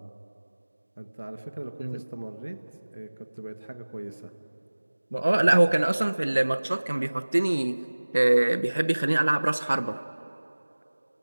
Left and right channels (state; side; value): inverted; both; correlation -1.00